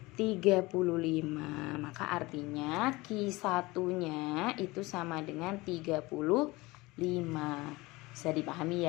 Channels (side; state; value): right; quieter; 21.8 dB